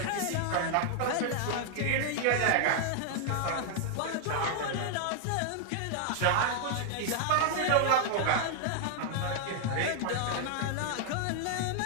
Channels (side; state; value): both; different; correlation 0.00